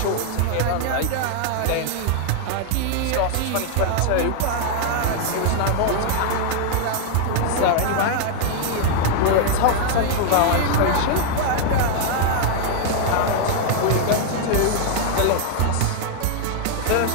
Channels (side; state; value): both; different; correlation 0.00